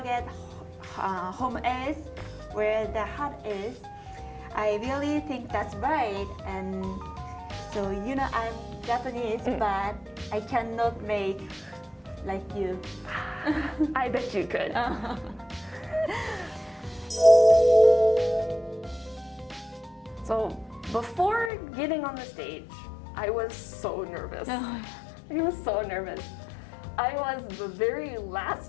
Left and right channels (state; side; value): drops out; right; at 21.5 s